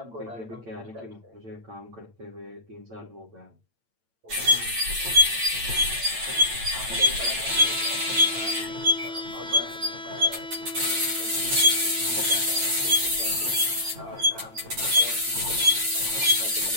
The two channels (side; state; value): left; late; 8.9 ms